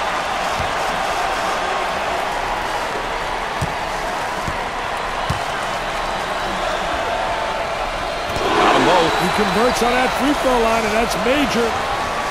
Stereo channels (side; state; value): both; identical; correlation 1.00